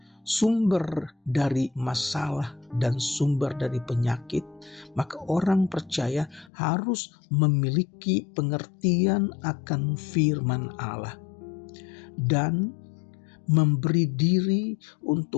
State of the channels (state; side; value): drops out; right; at 6.5 s